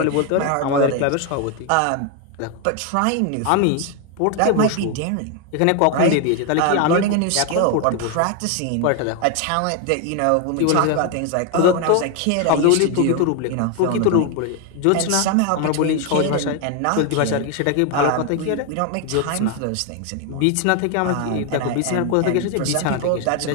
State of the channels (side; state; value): both; different; correlation 0.01